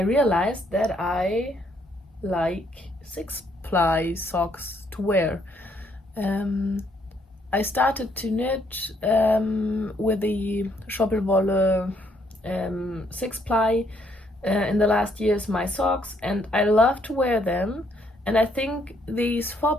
realized that I like 6-ply socks to wear. I started to knit with the Schoppelwolle 6-ply in the last years, my socks, and I love to wear them. And I think these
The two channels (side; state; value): both; normal; correlation 0.70